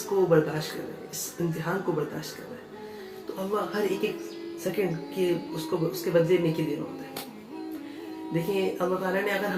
बर्दाश्त कर रहे हैं, इस इम्तिहान को बर्दाश्त कर रहे हैं। तो अल्लाह हर एक सेकंड के उसके बदले नेके दे रहा होता है। देखिए अल्लाह ताला ने अगर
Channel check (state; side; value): identical; both; correlation 1.00